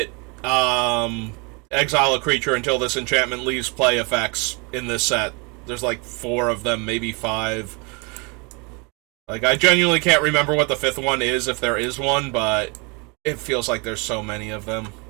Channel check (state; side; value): quieter; left; 31.0 dB